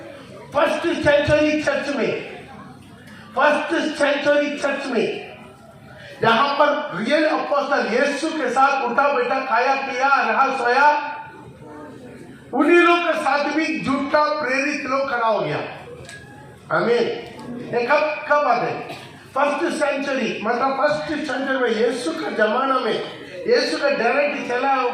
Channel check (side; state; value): both; identical; correlation 1.00